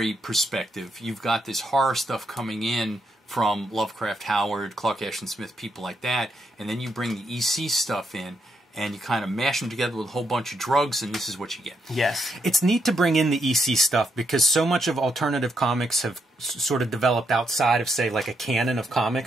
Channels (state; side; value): normal; both; correlation 0.78